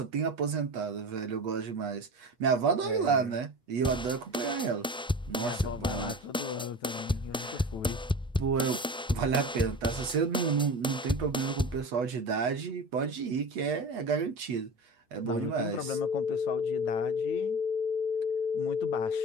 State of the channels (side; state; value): both; normal; correlation 0.33